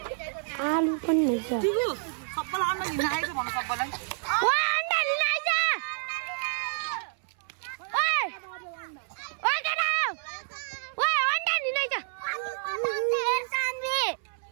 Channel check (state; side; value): silent; left; 59 dB below the other